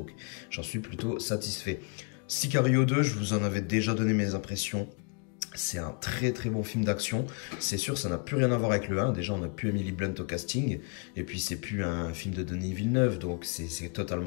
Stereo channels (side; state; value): right; quieter; 35.1 dB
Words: j'en suis plutôt satisfait. Sicario 2, je vous en avais déjà donné mes impressions. C'est un très très bon film d'action. C'est sûr, ça n'a plus rien à voir avec le 1. Déjà, on n'a plus Emily Blunt au casting. Et puis, c'est plus un film de Denis Villeneuve. Donc, c'est